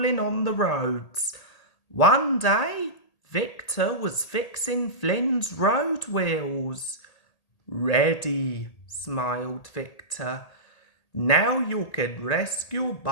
on the roads. One day, Victor was fixing Flynn's road wheels. "Ready," smiled Victor. "Now you can rescue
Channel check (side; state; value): right; late; 1.8 ms